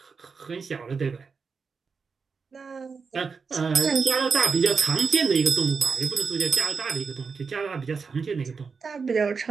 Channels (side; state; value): left; quieter; 5.2 dB